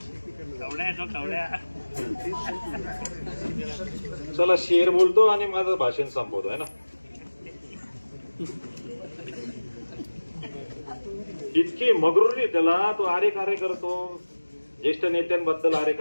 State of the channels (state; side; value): inverted; both; correlation -1.00